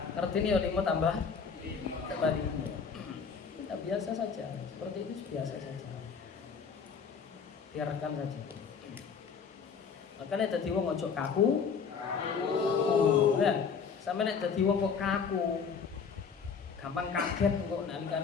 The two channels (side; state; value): right; quieter; 6.0 dB